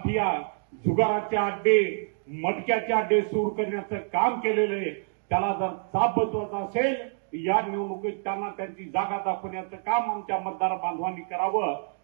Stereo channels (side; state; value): left; silent; digital silence